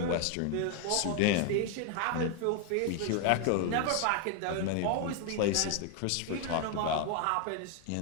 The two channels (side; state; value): both; different; correlation 0.01